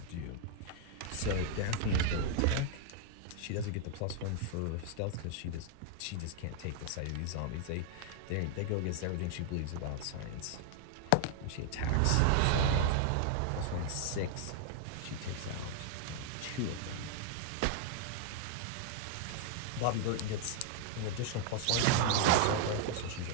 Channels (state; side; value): different; both; correlation 0.00